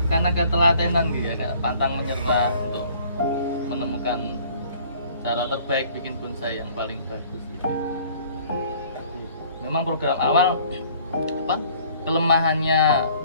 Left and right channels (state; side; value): inverted; both; correlation -0.55